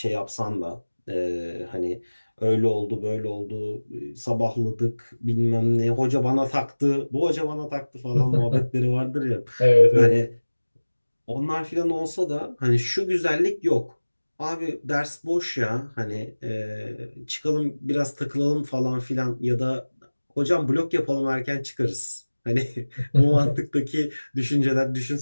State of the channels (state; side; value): inverted; both; correlation -1.00